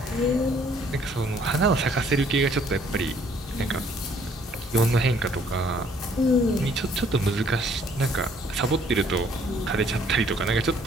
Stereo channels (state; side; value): normal; both; correlation 0.62